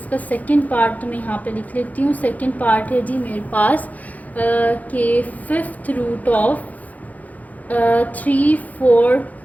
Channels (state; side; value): late; right; 0.077 ms